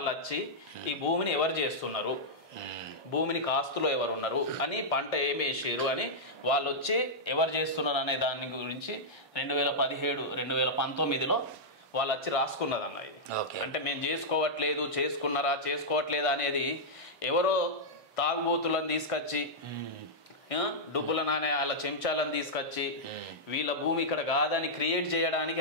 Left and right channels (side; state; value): both; normal; correlation -0.08